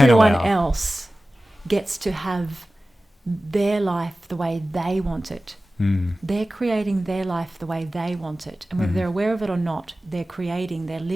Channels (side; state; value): both; normal; correlation 0.96